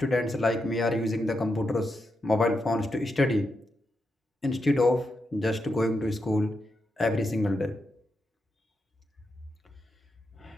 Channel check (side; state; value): both; normal; correlation 0.85